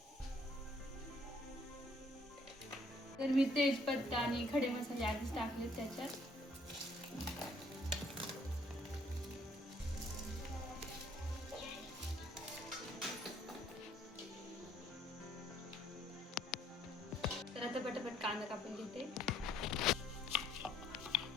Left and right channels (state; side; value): normal; both; correlation 0.64